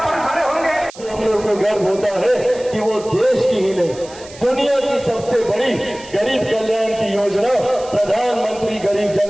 पर खड़े होंगे हम लोग को गर्व होता है कि वो देश की ही नहीं दुनिया की सबसे बड़ी गरीब कल्याण की योजना प्रधानमंत्री गरीब जन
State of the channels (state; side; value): noise; right; hiss, 19 dB below the sound